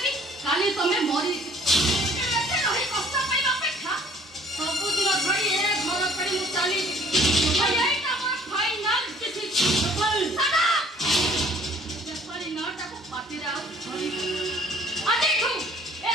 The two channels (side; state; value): both; normal; correlation 0.55